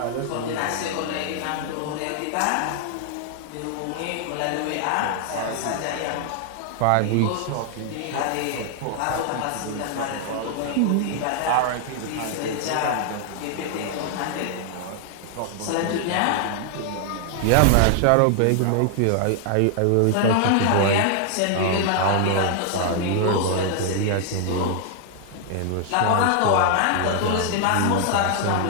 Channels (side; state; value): both; different; correlation 0.00